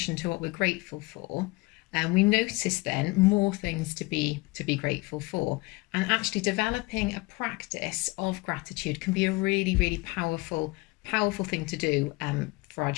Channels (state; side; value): quieter; right; 24.1 dB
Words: to what we're grateful for, we notice then more things to be grateful for, and actually developing a practice of gratitude can be a really, really powerful thing to do for our